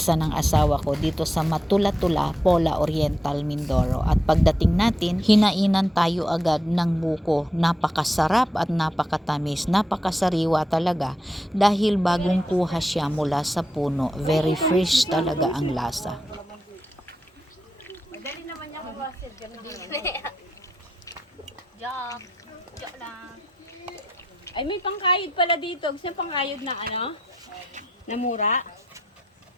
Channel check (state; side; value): normal; both; correlation 0.84